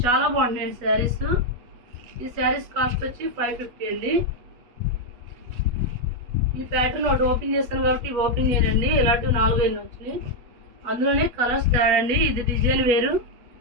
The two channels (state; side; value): late; left; 8.3 ms